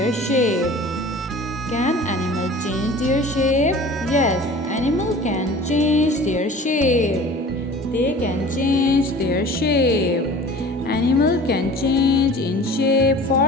shape. Can animal change their shape? Yes, animal can change their shape. They can change their shape. Animal can change in shape.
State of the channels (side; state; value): both; normal; correlation 0.42